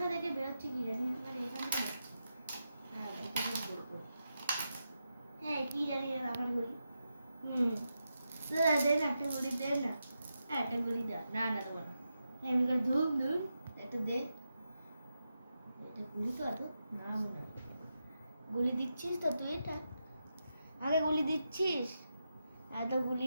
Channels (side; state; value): both; inverted; correlation -0.87